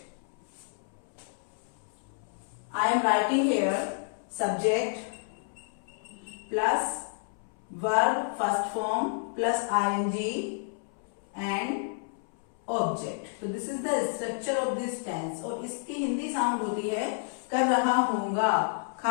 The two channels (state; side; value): silent; right; 57 dB below the other